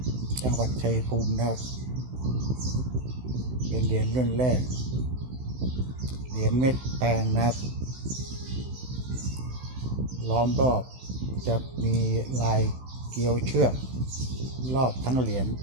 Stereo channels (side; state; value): left; late; 16 ms